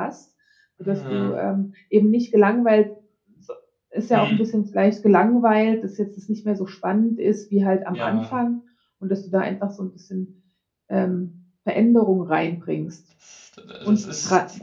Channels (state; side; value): identical; both; correlation 1.00